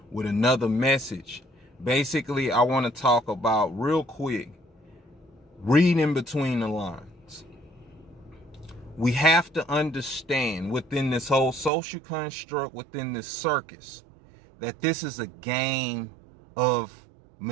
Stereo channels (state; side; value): drops out; left; at 11.7 s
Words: with another message. Basically, I want to talk about, real quick, reading between the lines. We have to understand within this whole social construct, within this circus, that this is a game of